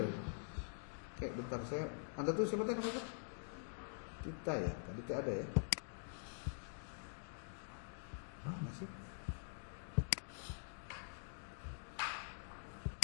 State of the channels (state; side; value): silent; right; digital silence